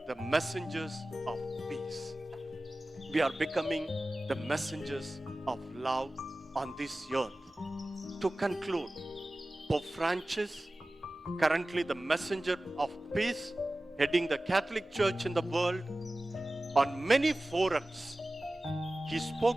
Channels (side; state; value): both; normal; correlation 0.96